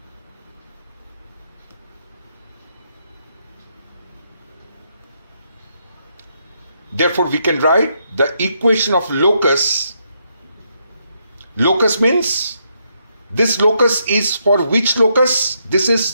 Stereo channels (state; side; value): inverted; both; correlation -0.77